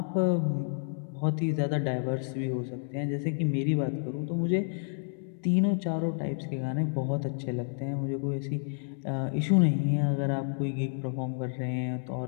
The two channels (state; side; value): silent; right; 58 dB below the other